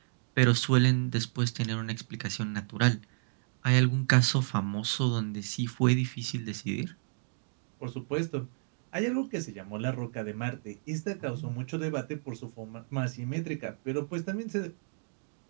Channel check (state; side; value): silent; left; digital silence